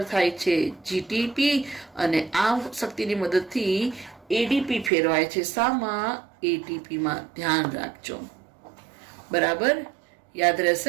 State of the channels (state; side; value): drops out; left; at 4.9 s